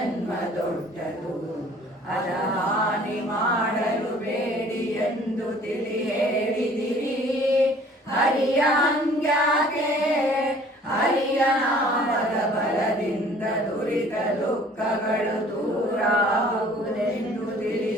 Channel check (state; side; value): normal; both; correlation 0.53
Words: ದೊಡ್ಡದು ಅದ ಹಾನಿ ಮಾಡಲು ಬೇಡಿ ಎಂದು ತಿಳಿ ಹೇಳಿದಿರಿ. ಹರಿಯ ಹಂಗ್ಯಾಕೆ ಹರಿಯ ನಾಮದ ಬಲದಿಂದ ದುರಿತ ದುಃಖಗಳು ದೂರಾಗುವುದೆಂದು